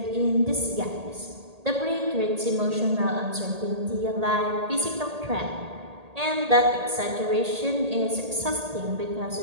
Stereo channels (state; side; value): late; left; 1.8 ms